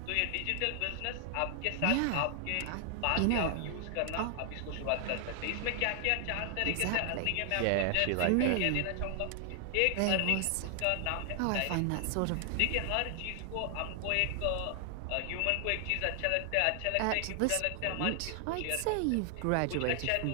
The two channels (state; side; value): different; both; correlation 0.00